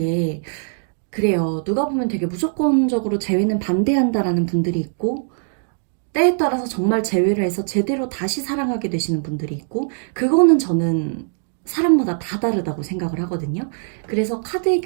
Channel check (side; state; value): left; silent; digital silence